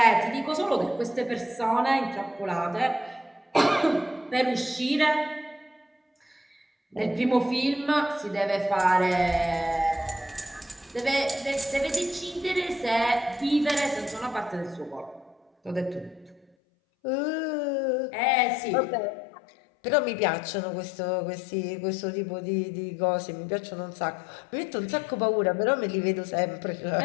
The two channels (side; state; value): right; drops out; at 16.4 s